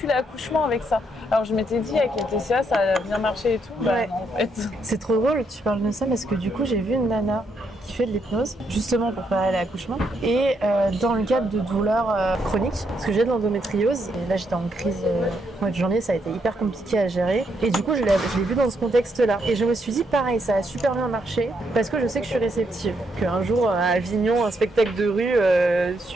l'accouchement avec ça. Alors je m'étais dit avec les TCA ça a bien marché et tout. Bah non, en fait. C'est trop drôle que tu parles de ça parce que du coup j'ai vu une nana qui fait de l'hypnose justement pour préparer l'accouchement et dans le cadre de douleurs chroniques parce que j'ai de l'endométriose et là j'étais en crise au mois de janvier, ça a été hyper compliqué à gérer et du coup je l'ai vu dans ce contexte là et je me suis dit pareil, ça a super bien marché parce que je sais que je suis réceptive, qu'un jour à Avignon un spectacle de rue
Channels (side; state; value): both; normal; correlation 0.77